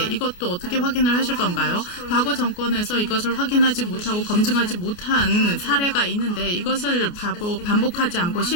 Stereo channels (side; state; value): right; late; 29 ms